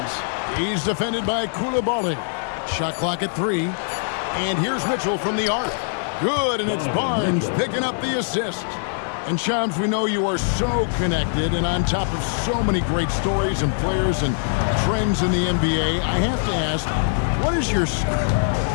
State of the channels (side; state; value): right; silent; digital silence